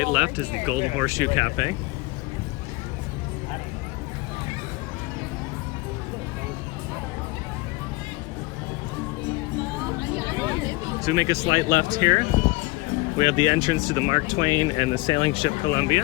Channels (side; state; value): right; quieter; 22.6 dB